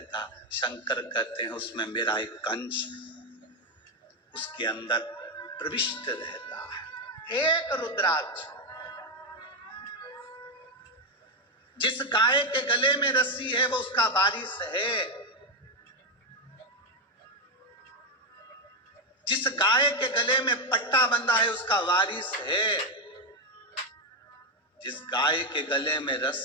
शंकर कहते हैं उसमें मेरा एक अंश उसके अंदर प्रविष्ट रहता है। एक रुद्राक्ष, जिस गाय के गले में रस्सी है वो उसका वारिस है। जिस गाय के गले में पट्टा बंधा है उसका वारिस है। जिस गाय के गले में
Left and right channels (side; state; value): both; normal; correlation 0.06